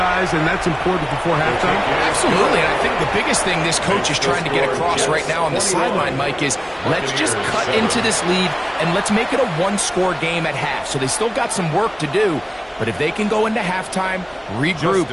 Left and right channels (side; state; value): both; identical; correlation 1.00